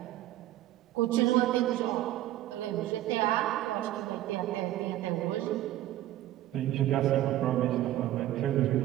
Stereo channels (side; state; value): left; quieter; 14.3 dB